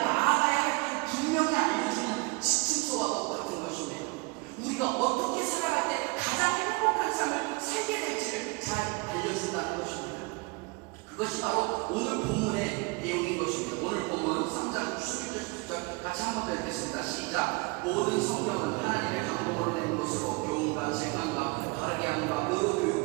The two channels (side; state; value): left; quieter; 28.0 dB